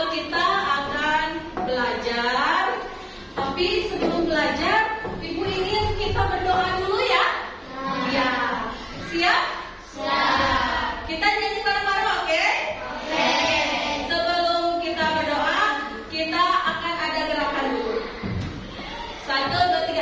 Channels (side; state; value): both; identical; correlation 1.00